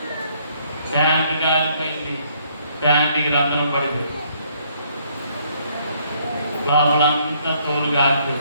ప్యాంటు కాలిపోయింది, ప్యాంటుకి రంధ్రం పడింది, లోపలంతా తోలు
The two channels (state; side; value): inverted; both; correlation -0.66